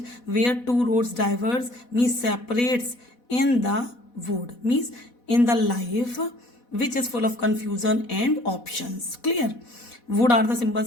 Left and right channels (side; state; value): right; late; 4.1 ms